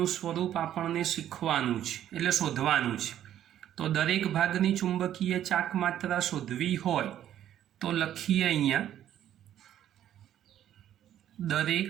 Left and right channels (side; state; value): left; quieter; 11.2 dB